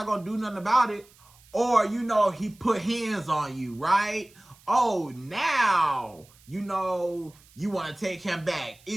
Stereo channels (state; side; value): noise; right; hiss, 27 dB below the sound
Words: gonna do nothing about it. Or, you know, he put hands on you, right? Oh, now, you know, you want to take him back.